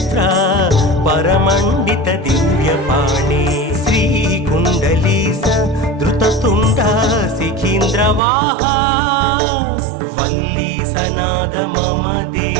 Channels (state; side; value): drops out; left; at 8.2 s